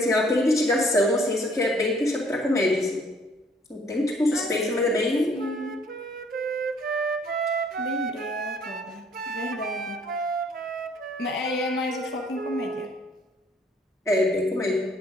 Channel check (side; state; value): both; normal; correlation 0.61